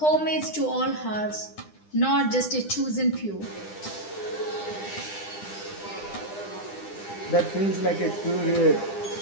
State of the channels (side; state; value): right; late; 9.9 ms